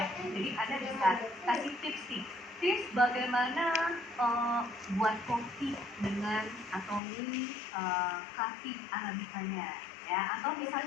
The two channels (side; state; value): right; drops out; at 7.0 s